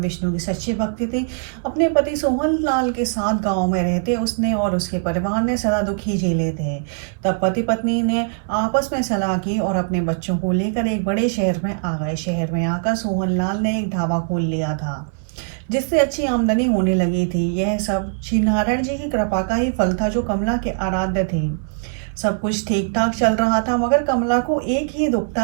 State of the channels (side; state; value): left; silent; digital silence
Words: विष्णु की सच्ची भक्ति थी। अपने पति सोहन लाल के साथ गांव में रहते उसने और उसके परिवार ने सदा दुख ही झेले थे। तब पति पत्नी ने आपस में सलाह की और अपने बच्चों को लेकर एक बड़े शहर में आ गए। शहर में आकर सोहन लाल ने एक ढाबा खोल लिया था, जिससे अच्छी आमदनी होने लगी थी। यह सब श्री नारायण जी की कृपा का ही फल था, जो कमला के आराध्य थे। सब कुछ ठीक ठाक चल रहा था, मगर कमला को एक ही दुख